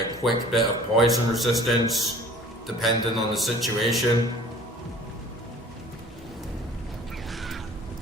quick bit of poison resistance, depending on the situation.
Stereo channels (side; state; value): both; normal; correlation 0.48